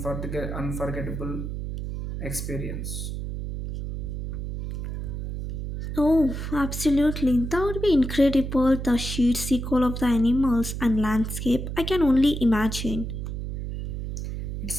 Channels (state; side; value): noise; right; hum, 5 dB below the sound